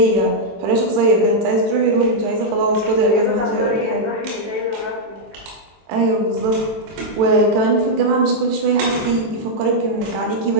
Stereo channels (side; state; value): left; late; 23 ms